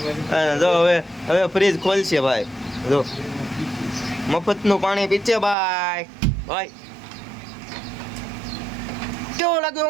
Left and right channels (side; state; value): left; drops out; at 5.6 s